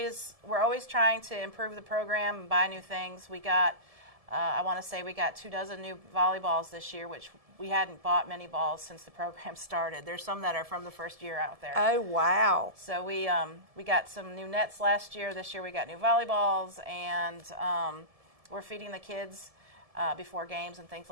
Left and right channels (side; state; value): left; late; 1.7 ms